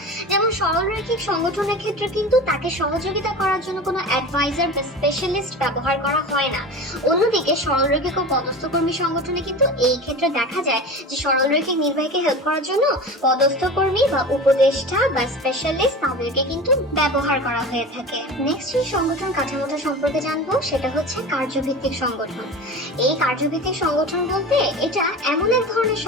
যেমন সরল রৈখিক সংগঠনের ক্ষেত্রে কিন্তু তাকে সহযোগিতা করার জন্য কোনো অ্যাডভাইজার বা স্পেশালিস্ট ব্যবহার করা হয় না। অন্যদিকে সরল রৈখিক ও পদস্থ কর্মী সংগঠনে কিন্তু এই ক্ষেত্রে দেখা যায় যে সরল রৈখিক নির্বাহীকে হেল্প করার জন্য পদস্থ কর্মী বা উপদেষ্টা বা স্পেশালিস্ট তাদেরকে কিন্তু ব্যবহার করা হয়ে থাকে। নেক্সট যে সংগঠন কাঠামোটা সম্পর্কে জানবো সেটা হচ্ছে কার্যভিত্তিক সংগঠন। এই কার্যভিত্তিক সংগঠন বলতে এটা এমন এক ধরনের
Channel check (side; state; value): both; normal; correlation 0.32